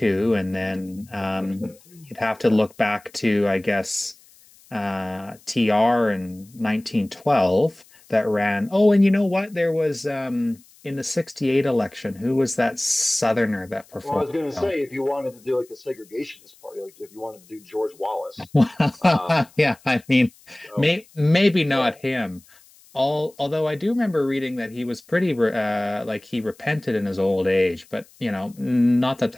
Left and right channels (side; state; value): left; noise; hiss, 27 dB below the sound